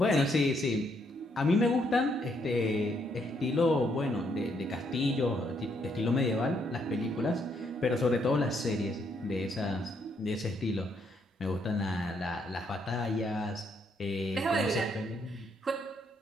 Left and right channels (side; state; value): both; normal; correlation 0.73